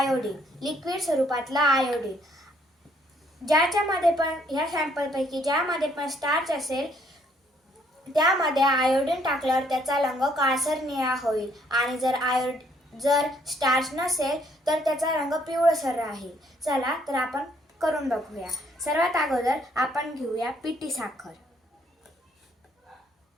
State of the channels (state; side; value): normal; both; correlation 0.67